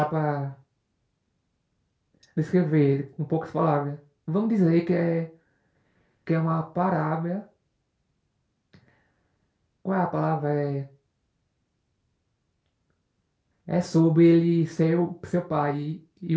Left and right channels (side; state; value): both; identical; correlation 1.00